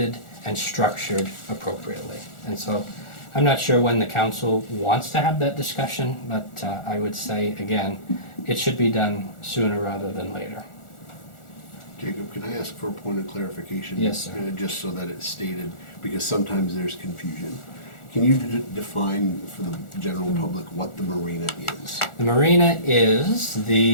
and structured appropriately. And so I'm not sure when the council wants to have that discussion, but I would say, again, it should be done sooner rather than later. Jacob, can I ask for a point of clarification? Yes, sir. Just so that it's stated, because sometimes there's confusion. Can you define for the general public what the marina is? The marina is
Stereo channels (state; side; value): late; right; 1.4 ms